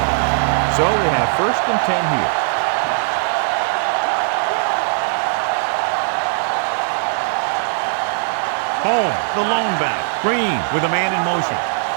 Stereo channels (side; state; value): left; silent; digital silence